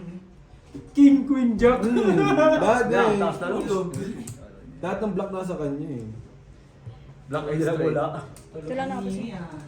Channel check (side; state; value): both; identical; correlation 1.00